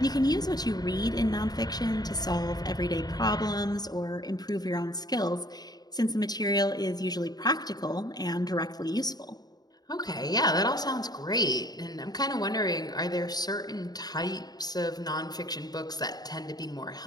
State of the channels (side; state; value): right; late; 0.19 ms